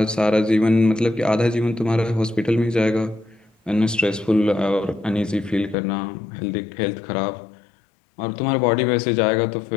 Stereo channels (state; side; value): drops out; right; at 5.8 s